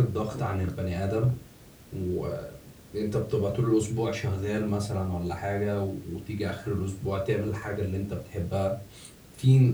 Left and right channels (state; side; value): identical; both; correlation 1.00